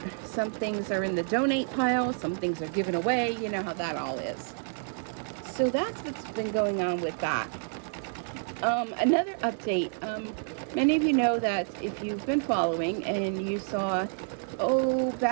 some things are in the donate pile, some things are given away. You know how that all is. So that's what's been going on with that. Another update, many of you know that if you've been following and you saw,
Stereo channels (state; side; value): silent; left; 58 dB below the other